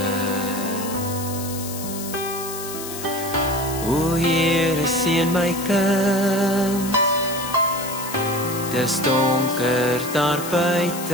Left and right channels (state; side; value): noise; left; hiss, 9 dB below the sound